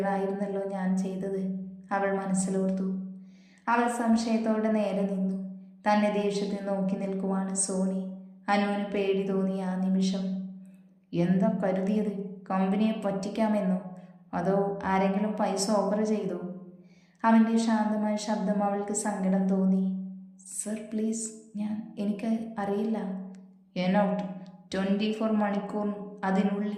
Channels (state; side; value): identical; both; correlation 1.00